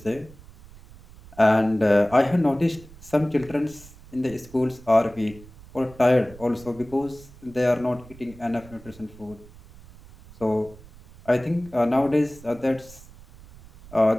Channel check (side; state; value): right; noise; rumble, 21 dB below the sound